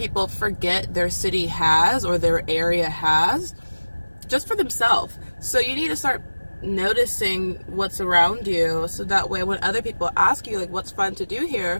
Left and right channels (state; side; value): inverted; both; correlation -1.00